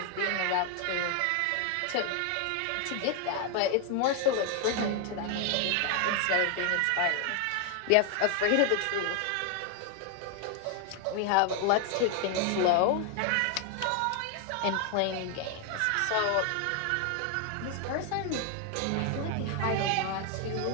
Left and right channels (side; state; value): both; different; correlation 0.00